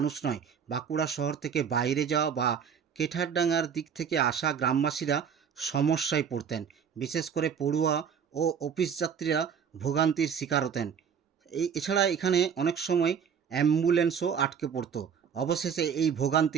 নয়, বাঁকুড়া শহর থেকে বাইরে যাওয়া বা কেঠারডাঙ্গার দিক থেকে আসা গ্রামবাসীরা সমস্যায় পড়তেন। বিশেষ করে পড়ুয়া ও অফিস যাত্রীরা ভোগান্তির শিকার হতেন। এছাড়া এখানে অনেক সময় অ্যাম্বুলেন্সও আটকে পড়তো। অবশেষে এই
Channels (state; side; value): quieter; left; 7.3 dB